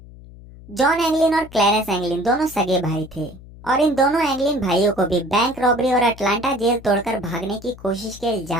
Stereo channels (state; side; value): noise; left; hum, 19 dB below the sound